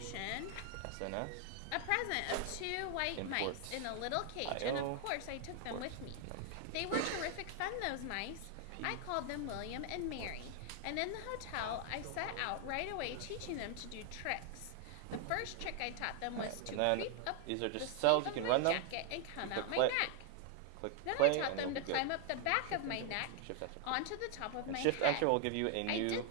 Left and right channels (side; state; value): both; different; correlation 0.00